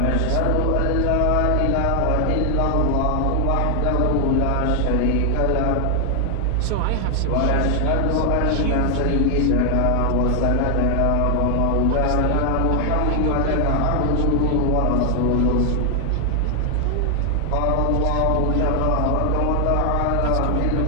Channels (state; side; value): different; both; correlation 0.00